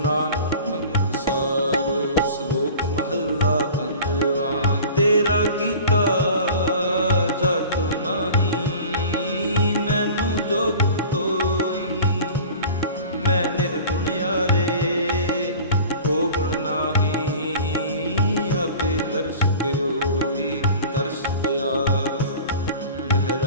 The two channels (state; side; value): inverted; both; correlation -0.40